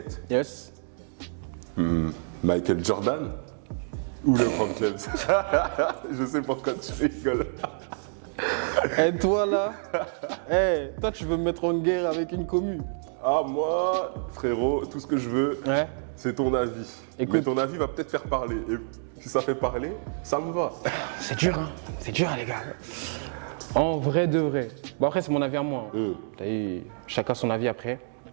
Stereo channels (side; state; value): left; silent; digital silence